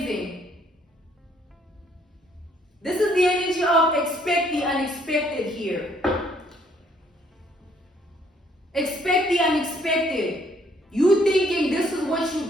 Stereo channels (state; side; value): normal; both; correlation 0.66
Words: This is the energy of expect the unexpected here. Expect the unexpected. You thinking this is what